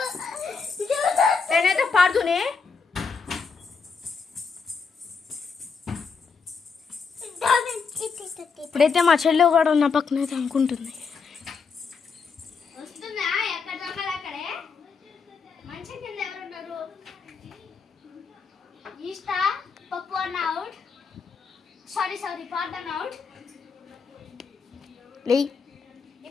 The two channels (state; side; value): quieter; right; 5.3 dB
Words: నేనైతే పాడుతూనే ఇప్పుడైతే మా చెల్లి కూడా ఉన్న పక్కన అయితే అనుకుంటుంది.